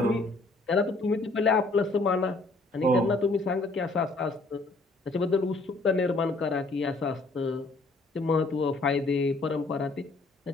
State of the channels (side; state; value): right; quieter; 3.2 dB